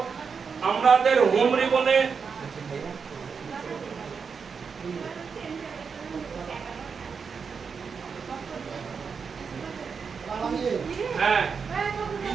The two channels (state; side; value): quieter; left; 5.8 dB